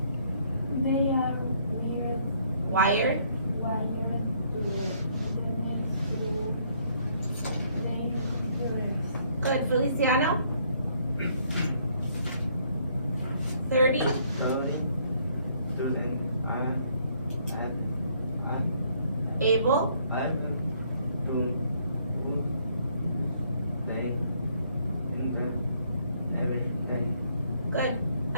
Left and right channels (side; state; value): both; inverted; correlation -0.67